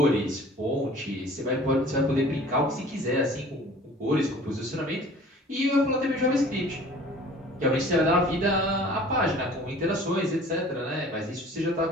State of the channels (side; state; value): both; normal; correlation 0.47